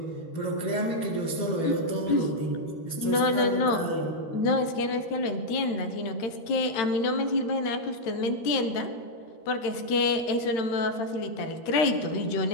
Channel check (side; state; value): right; late; 13 ms